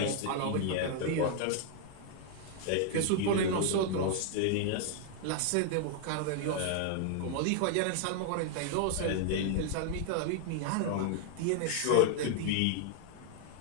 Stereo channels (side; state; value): both; different; correlation 0.00